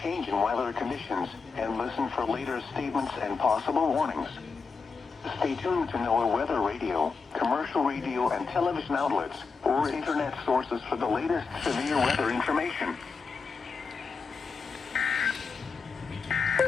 changing weather conditions and listen for later statements and possible warnings. Stay tuned to NOAA weather radio, commercial radio and television outlets, or internet sources for the latest severe weather information.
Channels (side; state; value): right; quieter; 4.9 dB